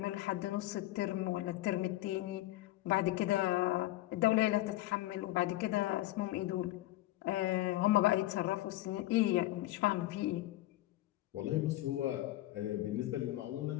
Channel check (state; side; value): quieter; right; 16.4 dB